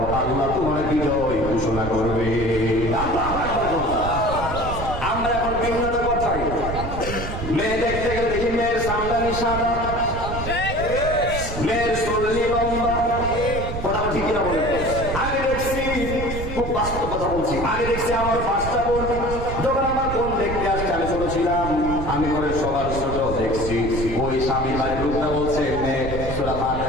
আল্লাহ তোমার বিজয় ঘোষণা করবে। আল্লাহু আকবার। আমরা এখন বিভিন্ন কথাই মেয়ে দেখতে গেলে দেখি মেয়ের সামদানি সাদা, মেয়ের চুলনি লম্বা। কথা ঠিক কিনা বলে? আগে দেখছি, খুব বাস্তব কথা বলছি, আগে দেখছি আমার 5টা বোন, যখন আমার বোন দেখতে আসছে, আমি ছোট ছিলাম, আমি ঘরে সবার ছোট দেখছি, ওই স্বামী বাড়ির লোকটা বলছে মেয়ে সূরা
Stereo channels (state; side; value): noise; right; rumble, 6 dB below the sound